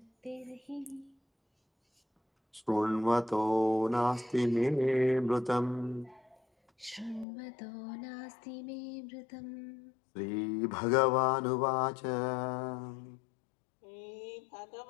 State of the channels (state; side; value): drops out; right; at 7.2 s